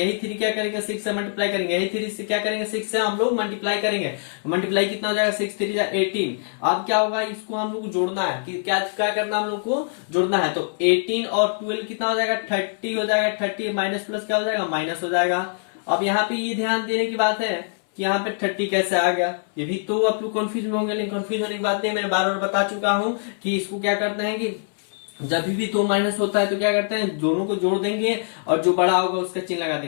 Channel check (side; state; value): right; silent; 62 dB below the other